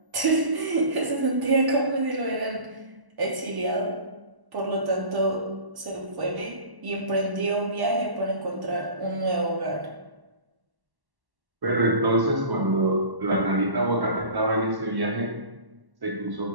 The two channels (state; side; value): late; left; 1.1 ms